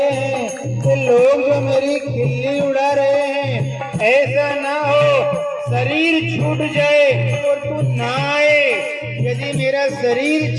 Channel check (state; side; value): identical; both; correlation 1.00